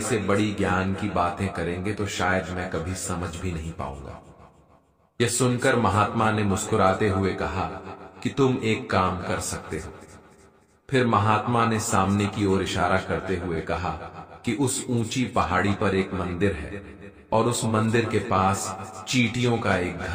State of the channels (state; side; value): identical; both; correlation 1.00